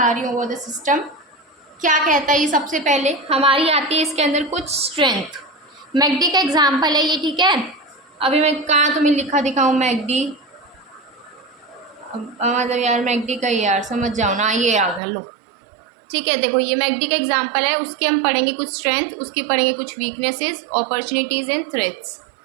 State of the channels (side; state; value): left; drops out; at 15.0 s